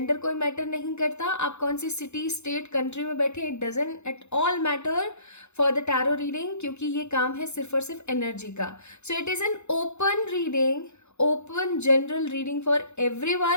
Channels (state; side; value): late; right; 0.82 ms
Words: कोई मैटर नहीं करता, आप कौन सी सिटी स्टेट कंट्री में बैठे, it doesn't at all matter for the tarot reading, क्योंकि ये काम है सिर्फ और सिर्फ एनर्जी का। So it is an open reading, open general reading for